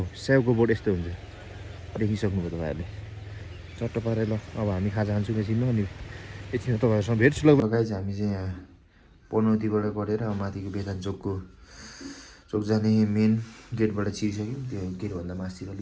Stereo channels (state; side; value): identical; both; correlation 1.00